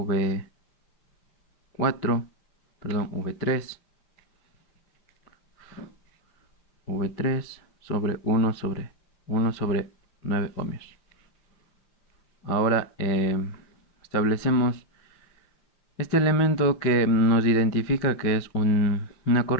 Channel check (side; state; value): right; late; 5.7 ms